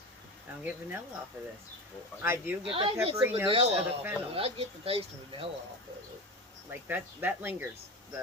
I don't get vanilla off of this. Well, I do get the I get peppery some notes vanilla of the off fennel. of it. I get the taste of vanilla off of it. Like that lingers.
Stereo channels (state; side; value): normal; both; correlation 0.26